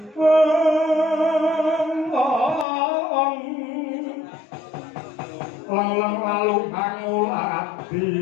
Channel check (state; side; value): drops out; right; at 2.7 s